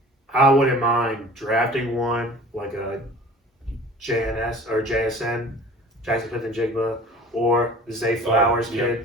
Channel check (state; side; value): normal; both; correlation 0.44